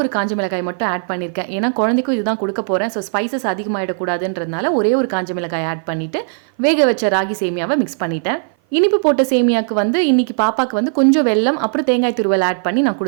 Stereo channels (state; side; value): silent; left; 56 dB below the other